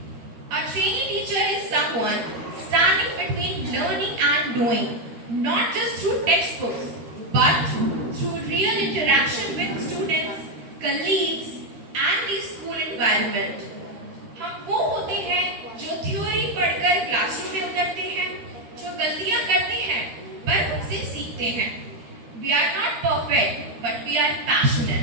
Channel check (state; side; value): late; left; 13 ms